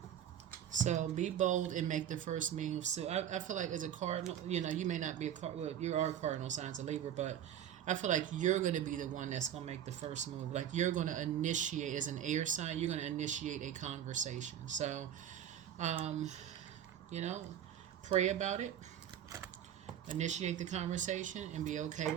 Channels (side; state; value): left; quieter; 10.1 dB